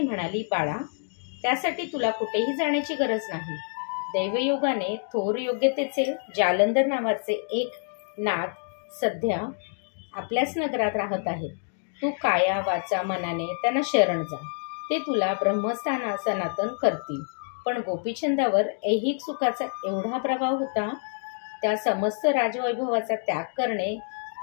म्हणाली, बाळा, त्यासाठी तुला कुठेही जाण्याची गरज नाही। दैवयोगाने थोर योग्यतेचे जालंधर नावाचे एक नाथ सध्या आपल्याच नगरात राहत आहेत। तू काया वाचा मनाने त्यांना शरण जा, ते तुला ब्रह्मस्थान सनातन करतील। पण गोपीचंदावर ऐहिक सुखाचा एवढा प्रभाव होता, त्या समस्त राजवैभवाचा त्याग करणे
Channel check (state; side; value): silent; right; 59 dB below the other